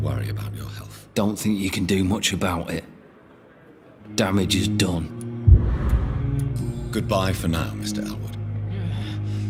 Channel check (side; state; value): both; identical; correlation 1.00